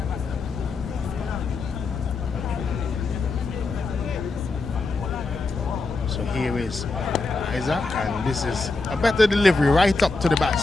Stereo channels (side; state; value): right; quieter; 3.7 dB